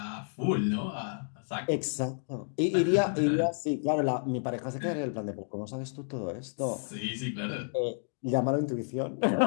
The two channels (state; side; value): silent; right; digital silence